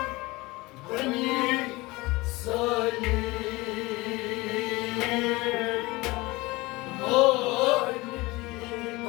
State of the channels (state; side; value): quieter; right; 21.9 dB